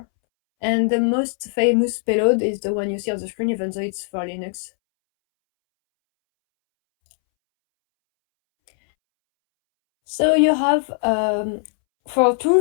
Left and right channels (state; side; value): silent; right; 66 dB below the other